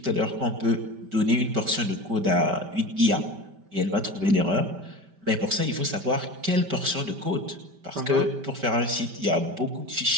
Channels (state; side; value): late; left; 5.1 ms